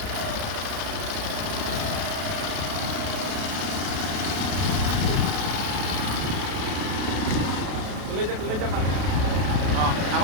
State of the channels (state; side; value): late; left; 32 ms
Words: tôi lên cho mặt nó